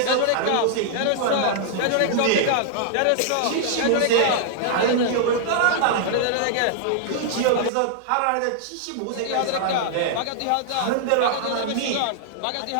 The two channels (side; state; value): both; different; correlation -0.01